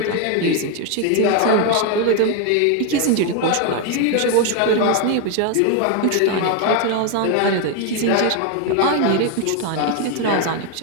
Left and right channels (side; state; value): both; different; correlation 0.01